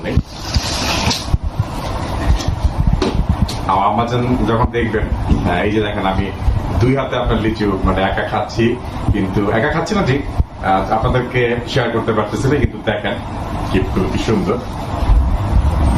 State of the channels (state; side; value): identical; both; correlation 1.00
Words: নেই। আমার আম্মা যখন দেখবেন, এই যে দেখেন আমি 2 হাতে আপনার লিচু মানে একা খাচ্ছি, কিন্তু একা খাচ্ছি না ঠিক, আপনাদেরকে শেয়ার করতে পারতেছি না, কিন্তু দেখেন কি সুন্দর।